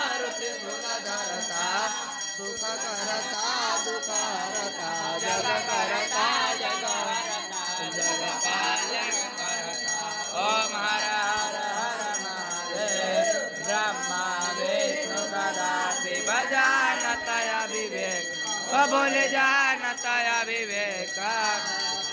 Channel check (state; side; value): identical; both; correlation 1.00